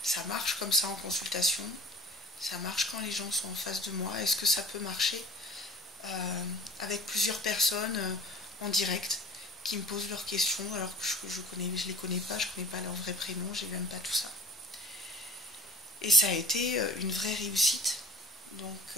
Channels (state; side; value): normal; both; correlation 0.44